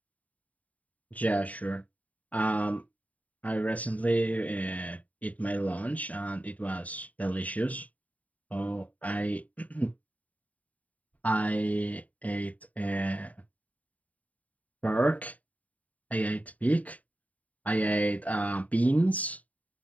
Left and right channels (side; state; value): right; late; 0.071 ms